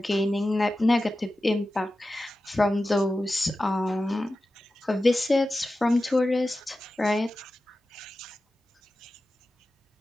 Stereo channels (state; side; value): normal; both; correlation 0.94